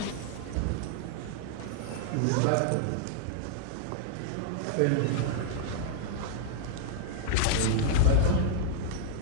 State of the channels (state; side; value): different; both; correlation 0.00